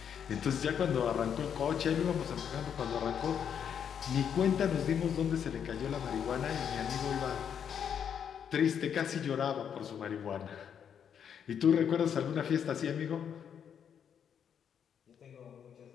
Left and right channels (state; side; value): quieter; right; 8.1 dB